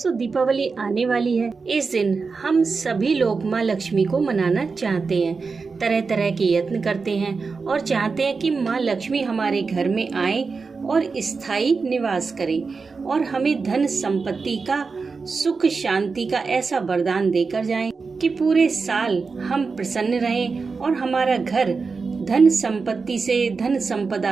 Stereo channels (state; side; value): quieter; left; 4.6 dB